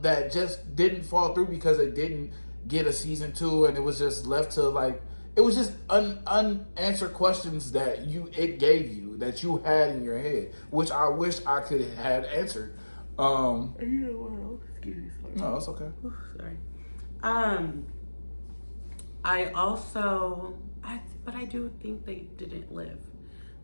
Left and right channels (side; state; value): both; inverted; correlation -1.00